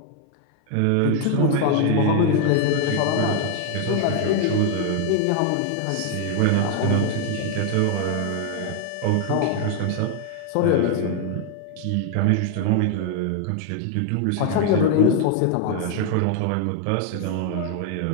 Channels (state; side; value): different; both; correlation 0.00